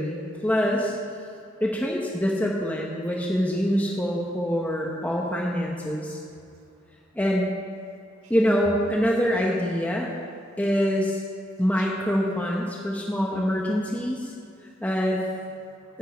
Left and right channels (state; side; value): normal; both; correlation 0.82